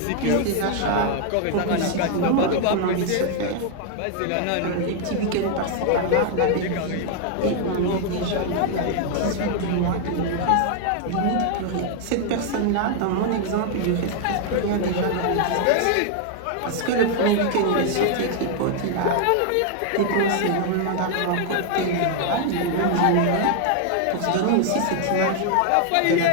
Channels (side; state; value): both; different; correlation 0.00